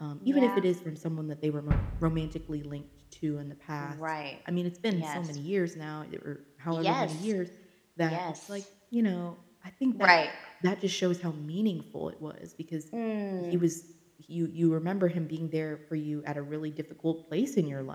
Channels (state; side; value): identical; both; correlation 1.00